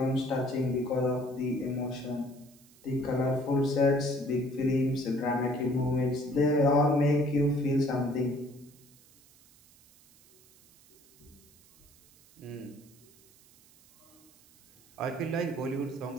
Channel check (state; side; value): noise; right; hiss, 27 dB below the sound